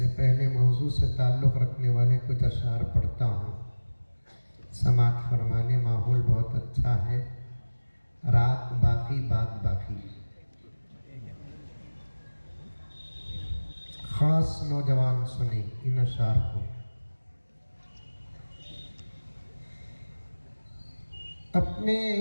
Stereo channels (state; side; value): inverted; both; correlation -1.00